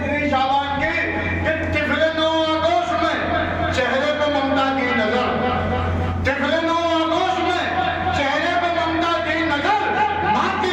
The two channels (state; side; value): identical; both; correlation 1.00